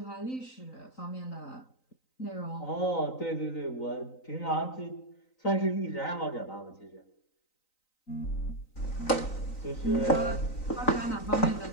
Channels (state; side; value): late; right; 3.9 ms